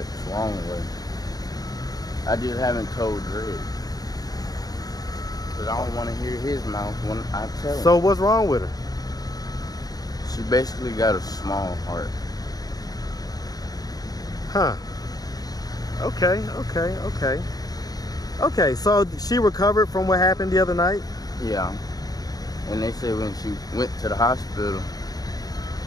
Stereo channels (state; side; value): late; right; 0.18 ms